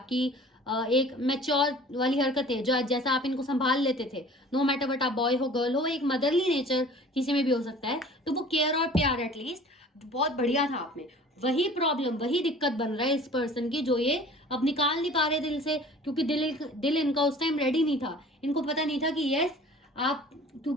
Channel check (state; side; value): normal; both; correlation 0.46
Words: एक मैच्योर वाली हरकतें जो जैसा आप इनको संभाल लेते थे, नो मैटर बट आप बॉय हो गर्ल हो, एक मदरली नेचर किसी में भी हो सकता है, तो वो केयर और प्यार एटलीस्ट बहुत बढ़िया था आप में। वही प्रॉब्लम, वही दिक्कत बन रहा है इस पर्सन की, जो ये अब निकाल नहीं पा रहे दिल से, क्योंकि दिल इनका उस टाइम रेडी नहीं था। इनको पता नहीं था कि यस आप,